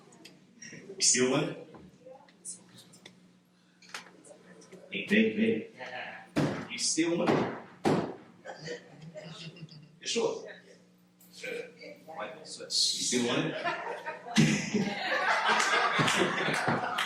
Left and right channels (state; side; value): identical; both; correlation 1.00